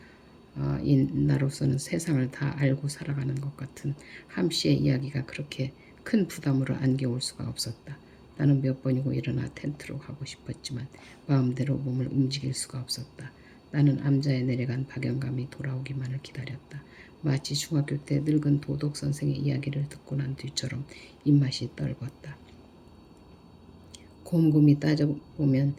나로서는 세상을 다 알고 살아가는 것 같은 함씨의 이야기가 그렇게 큰 부담으로 안겨올 수가 없었다. 나는 몇 번이고 일어나 텐트로 가고 싶었지만 마음대로 몸을 움직일 수가 없었다. 나는 암자에 내려간 박영감이 돌아오기만을 기다렸다. 마치 중학교 때 늙은 도덕 선생의 이야기를 듣고 난 뒤처럼 입맛이 떨궜다. 곰곰이 따져보면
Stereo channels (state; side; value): identical; both; correlation 1.00